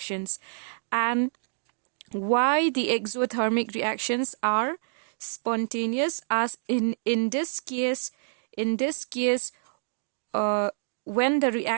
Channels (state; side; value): silent; left; digital silence